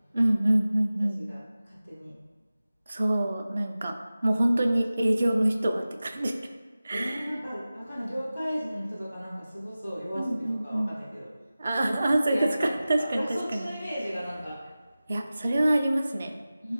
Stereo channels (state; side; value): inverted; both; correlation -0.96